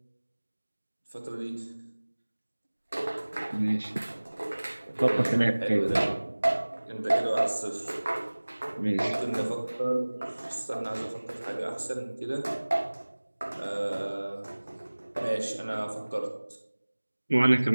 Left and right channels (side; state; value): both; inverted; correlation -1.00